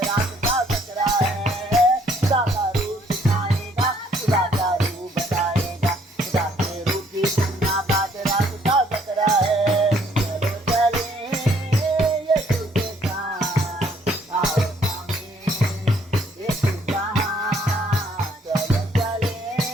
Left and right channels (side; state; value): both; normal; correlation 0.65